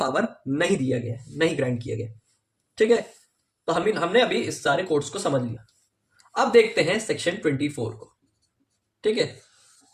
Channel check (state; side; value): identical; both; correlation 1.00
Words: नहीं दिया गया, नहीं ग्रांट किया गया, ठीक है। तो हमने अभी इस सारे कोड्स को समझ लिया। अब देखते हैं सेक्शन 24 को, ठीक है।